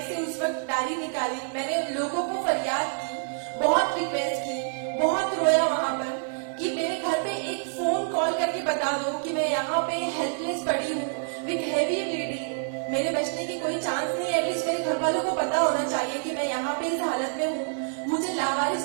से उस वक्त डायरी निकाली, मैंने लोगों को फरियाद की, बहुत रिक्वेस्ट की, बहुत रोया वहां पर कि मेरे घर पे एक फोन कॉल करके बता दो कि मैं यहाँ पे हेल्पलेस पड़ी हूँ विथ हेवी ब्लीडिंग, मेरे बचने की कोई चांस नहीं है। एटलीस्ट मेरे घर वालों को पता होना चाहिए कि मैं यहाँ पे इस हालत में हूँ, मुझे लावारिस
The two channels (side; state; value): left; silent; digital silence